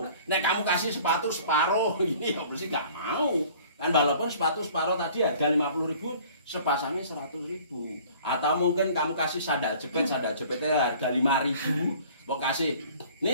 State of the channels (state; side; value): inverted; both; correlation -0.50